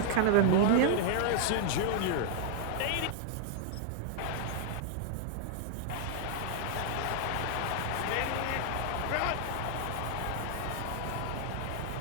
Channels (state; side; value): different; both; correlation 0.00